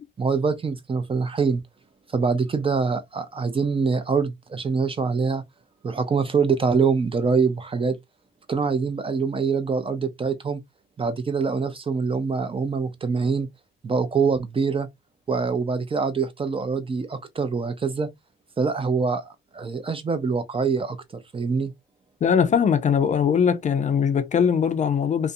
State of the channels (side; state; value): both; normal; correlation 0.59